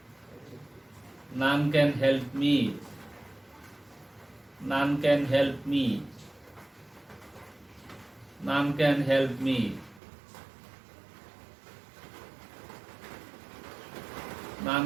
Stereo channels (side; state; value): left; drops out; at 10.0 s